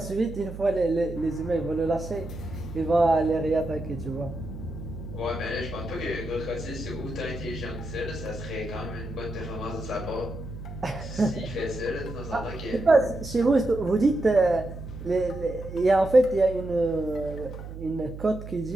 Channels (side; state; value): right; noise; hum, 11 dB below the sound